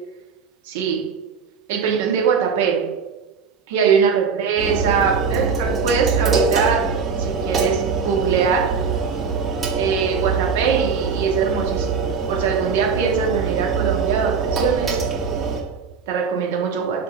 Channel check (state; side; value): quieter; left; 5.7 dB